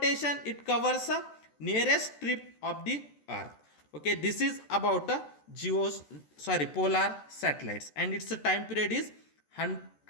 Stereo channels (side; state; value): right; late; 14 ms